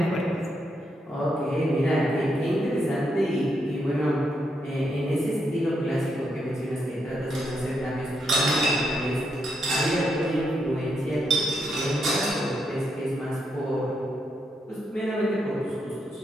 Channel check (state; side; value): normal; both; correlation 0.80